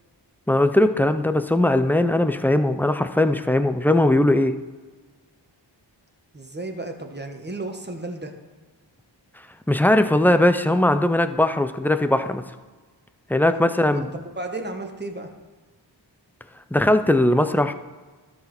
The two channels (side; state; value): both; normal; correlation 0.85